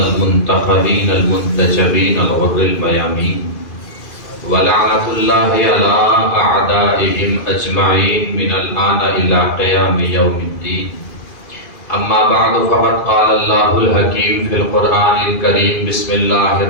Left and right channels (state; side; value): late; right; 2.4 ms